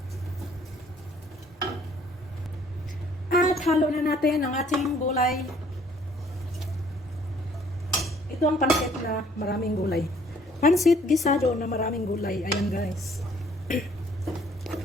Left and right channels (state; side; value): normal; both; correlation 0.60